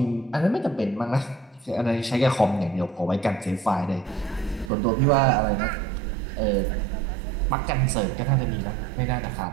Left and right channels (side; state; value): left; drops out; at 4.7 s